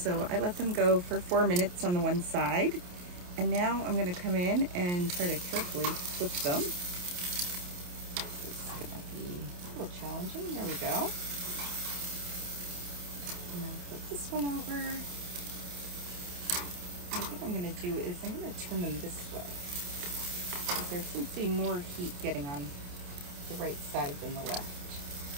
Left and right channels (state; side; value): late; left; 28 ms